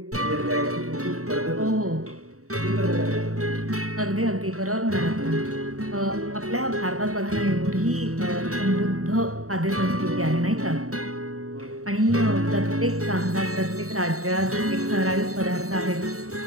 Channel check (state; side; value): late; left; 0.64 ms